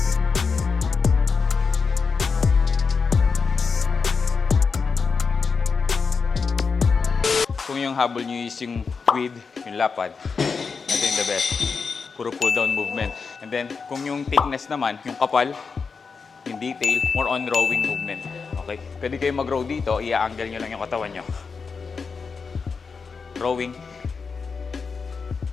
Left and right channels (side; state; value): right; quieter; 5.1 dB